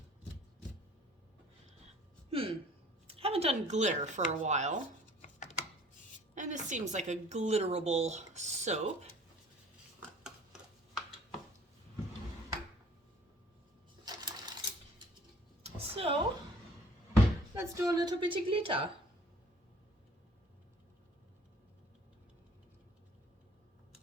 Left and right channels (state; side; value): normal; both; correlation 0.52